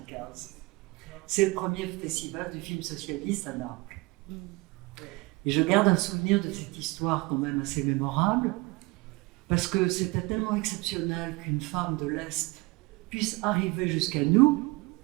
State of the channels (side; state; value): left; quieter; 24.8 dB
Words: C'est le premier festival du film socialiste à Naples. Et je garde un souvenir de cette histoire quand même assez mémorable, parce que c'était tellement exceptionnel qu'une femme de l'Est puisse arriver jusqu'à nous